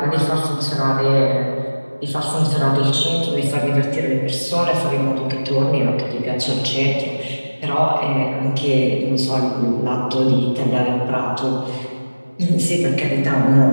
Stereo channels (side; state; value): both; inverted; correlation -1.00